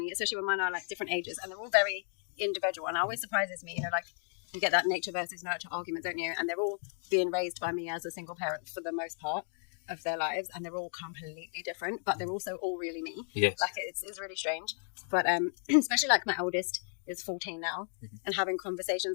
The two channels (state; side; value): silent; right; 55 dB below the other